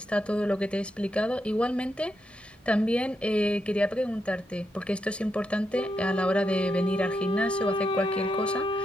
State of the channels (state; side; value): normal; both; correlation 0.83